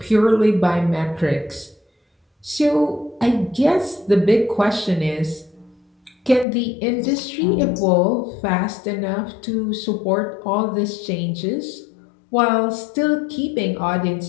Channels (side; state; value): right; drops out; at 6.5 s